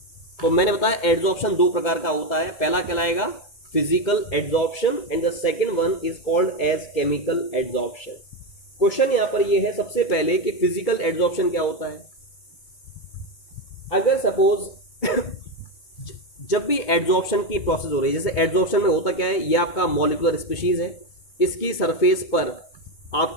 तो मैंने बताया एड्जॉर्प्शन दो प्रकार का होता है। पहला कहलाएगा physical adsorption and the second one is called as chemical adsorption. Question यहां पर यह है सबसे पहले कि फिजिकल एड्जॉर्प्शन क्या होता है। अगर सपोज जब भी एड्जॉर्प्शन की प्रोसेस हो रही है, जैसे एड्जॉर्प्शन में होता क्या है, ये आपका मॉलिक्यूलर स्पीशीज है, इसकी सरफेस पर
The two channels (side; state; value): right; late; 2.2 ms